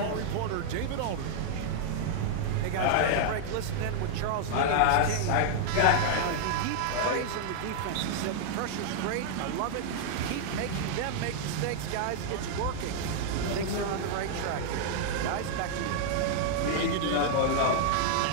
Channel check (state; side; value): different; both; correlation -0.01